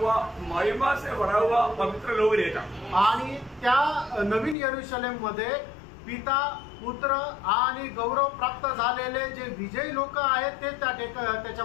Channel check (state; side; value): drops out; right; at 4.5 s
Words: महिमा से भरा हुआ पवित्र लोग रहता। आणि त्या नवीन यरूशलेम मध्ये पिता पुत्र आणि गौरव प्राप्त झालेले जे विजयी लोक आहेत ते